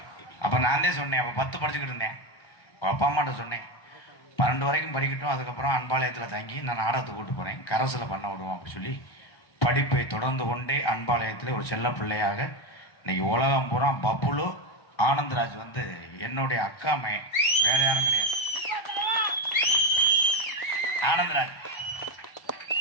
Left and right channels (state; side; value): late; right; 1.3 ms